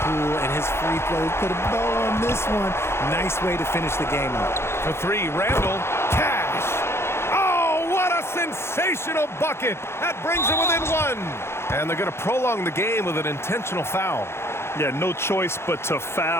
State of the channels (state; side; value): late; right; 0.12 ms